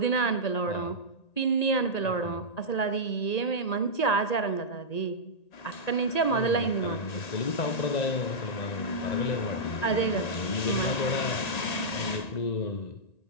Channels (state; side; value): late; right; 1.9 ms